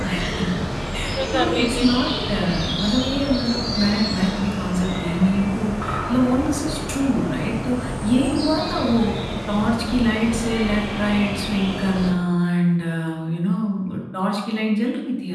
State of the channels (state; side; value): identical; both; correlation 1.00